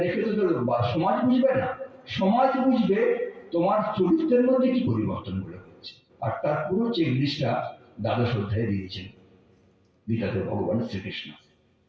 দেখে তো সমাজ বুঝবে না। সমাজ বুঝবে তোমার চরিত্রের মধ্যে কি পরিবর্তন গুলো। আর তার পুরো চেকলিস্টটা দ্বাদশ অধ্যায়ে দিয়েছেন গীতাতে ভগবান শ্রীকৃষ্ণ।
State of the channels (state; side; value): identical; both; correlation 1.00